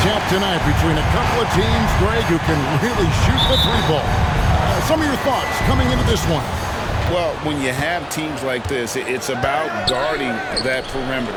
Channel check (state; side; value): identical; both; correlation 1.00